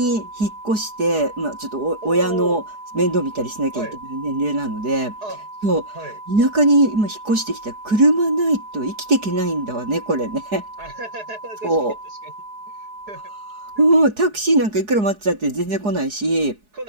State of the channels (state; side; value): late; left; 4.8 ms